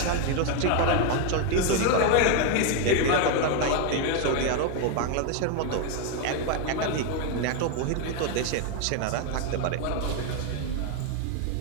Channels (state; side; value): different; both; correlation 0.01